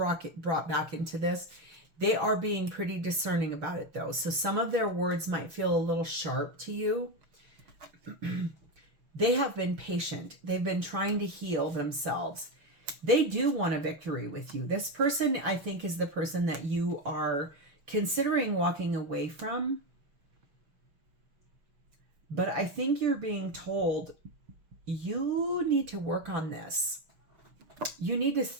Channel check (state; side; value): late; left; 6.1 ms